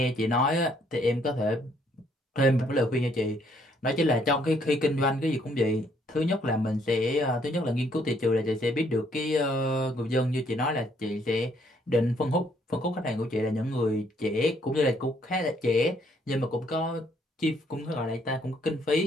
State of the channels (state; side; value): normal; both; correlation 0.68